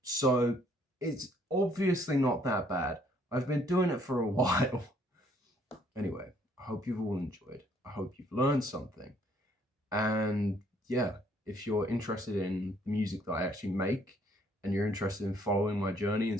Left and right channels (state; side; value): normal; both; correlation 0.64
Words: So it's obviously not that bad. I've been doing it for a while. Anyway, I hope you've all enjoyed. I hope you've learned something. And yeah, if you're interested in the music that I actually make and you're interested in following my journey